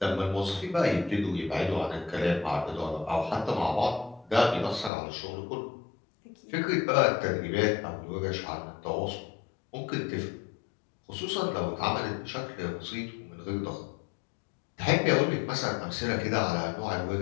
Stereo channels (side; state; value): right; drops out; at 4.9 s